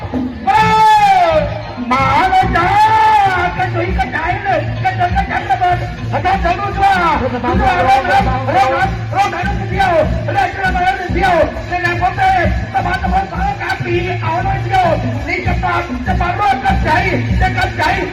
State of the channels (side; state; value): both; identical; correlation 1.00